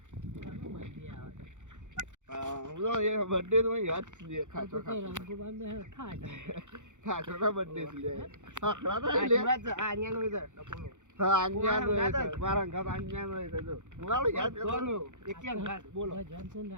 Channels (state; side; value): late; left; 0.85 ms